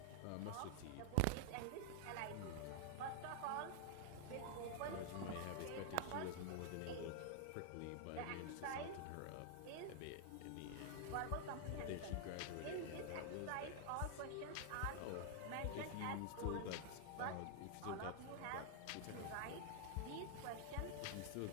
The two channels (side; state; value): both; different; correlation 0.00